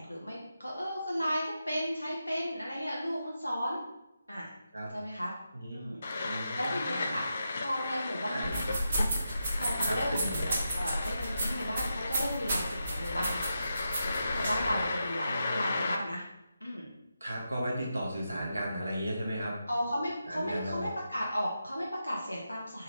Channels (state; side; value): inverted; both; correlation -0.87